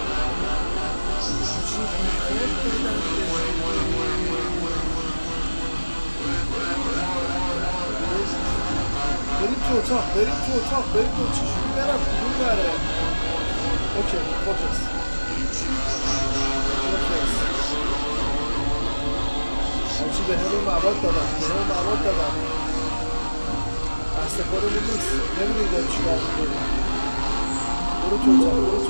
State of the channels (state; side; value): inverted; both; correlation -1.00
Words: بریم تو اتاق بریم تو چجوری برم کدوم بره اوکی فوکس همچی به همه مواد دادم دست خودمون نیست نمیدونی داری چیکار میکنی برو